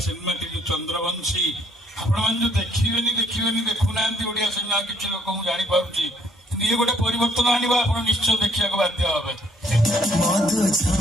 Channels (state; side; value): normal; both; correlation 0.66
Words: सिनेमा टी चंद्रवंशी आपण जो देखिए देखुना ओडिया सिनेमा किसी लोक जानी पारुची ये गोटे परिवर्तन आनिबा आपण निश्चय देखिया को बाध्य होबे।